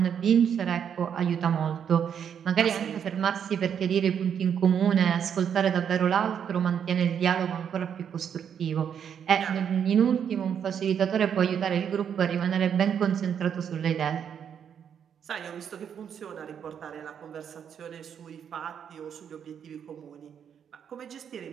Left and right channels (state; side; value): quieter; left; 8.1 dB